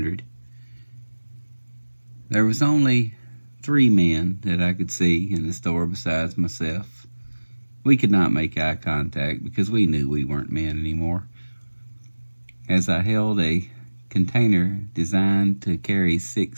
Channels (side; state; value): both; inverted; correlation -1.00